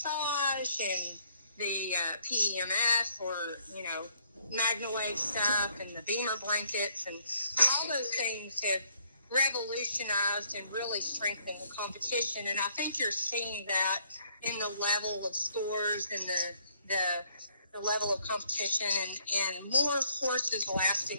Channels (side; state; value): both; inverted; correlation -0.67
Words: and the PEMF or, MagnaWave stuff and the Beamer blankets, and all those things have revolutionized and really strengthened the competition. And I think you're seeing that in the level of scores and the level of competition and more horses